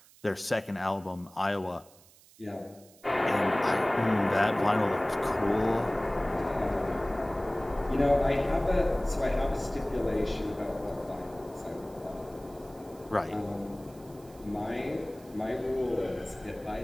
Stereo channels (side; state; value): right; noise; hiss, 26 dB below the sound